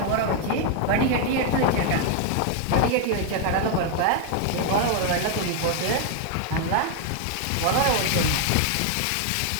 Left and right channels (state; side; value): different; both; correlation 0.00